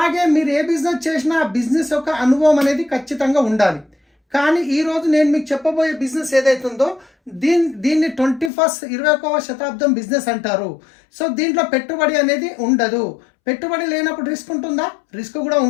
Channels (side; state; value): right; drops out; at 8.5 s